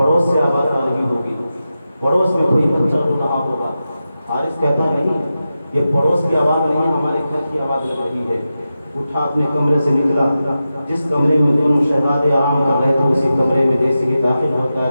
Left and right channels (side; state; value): both; inverted; correlation -0.91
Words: سے آواز آ رہی ہوگی, پڑوس میں کوئی بچہ رو رہا ہوگا. حارث کہتا ہے نہیں, یہ پڑوس کی آواز نہیں ہے, ہمارے گھر کی آواز لگ رہی ہے. اٹھا اپنے کمرے سے نکلا. جس کمرے میں دونوں شہزادے آرام کر رہے تھے اسی کمرے میں جیسے ہی داخل ہوتا